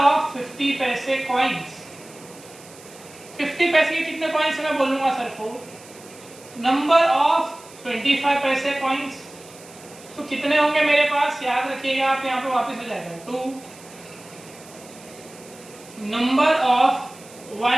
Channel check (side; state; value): right; noise; hiss, 21 dB below the sound